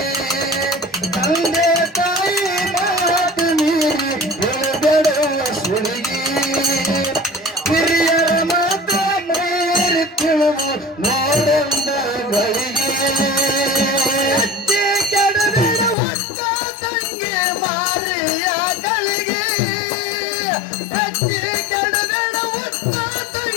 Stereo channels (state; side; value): drops out; right; at 16.0 s